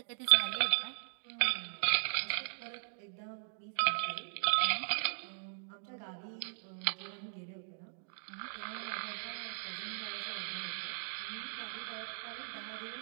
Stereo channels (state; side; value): silent; left; digital silence